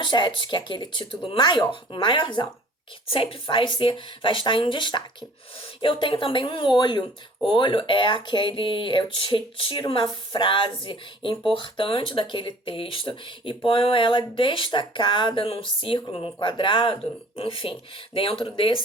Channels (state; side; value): normal; both; correlation 0.50